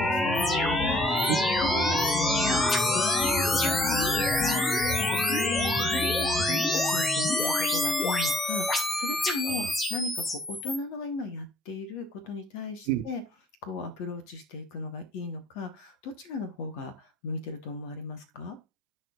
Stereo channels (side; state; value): both; normal; correlation 0.62